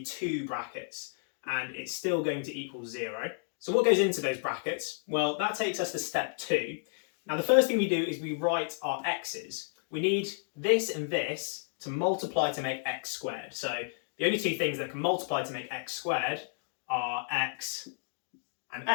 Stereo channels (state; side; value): silent; right; 57 dB below the other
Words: 2 brackets and it's still going to equal 0. So what goes into those brackets? Well, that takes us to step 2. Now, the first thing we do is we write our x's. We need this and this to multiply to make x squared. So the only 2 things that can multiply to make x squared are x and